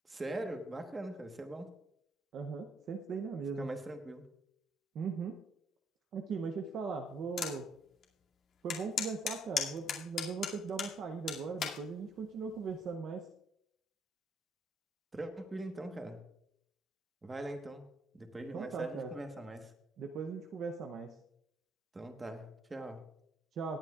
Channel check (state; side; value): normal; both; correlation 0.69